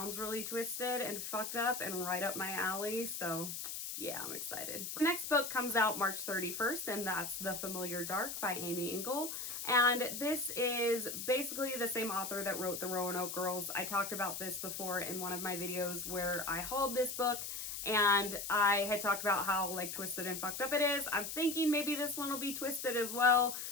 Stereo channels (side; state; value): left; noise; hiss, 5 dB below the sound